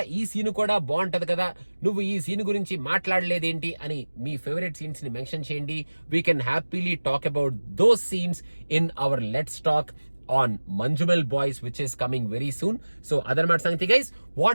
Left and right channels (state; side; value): inverted; both; correlation -1.00